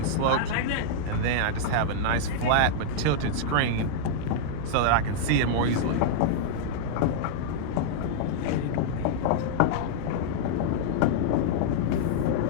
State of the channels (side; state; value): both; different; correlation -0.02